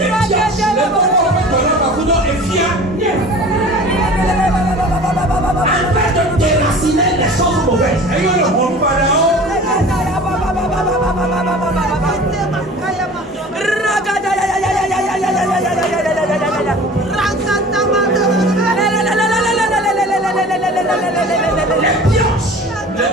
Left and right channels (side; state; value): both; normal; correlation 0.42